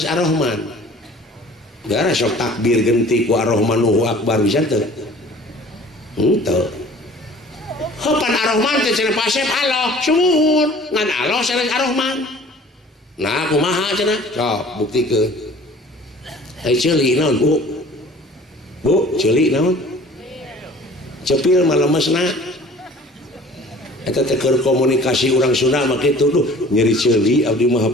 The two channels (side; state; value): both; normal; correlation 0.48